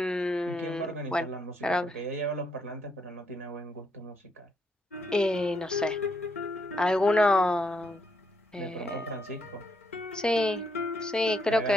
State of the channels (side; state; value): both; normal; correlation 0.76